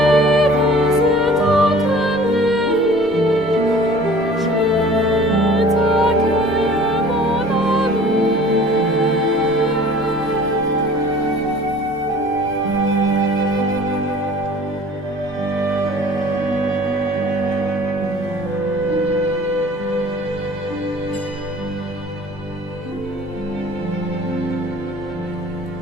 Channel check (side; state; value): both; normal; correlation 0.48